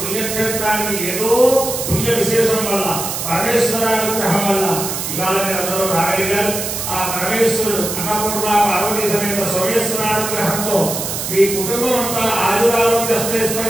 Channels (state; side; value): noise; right; hiss, 4 dB below the sound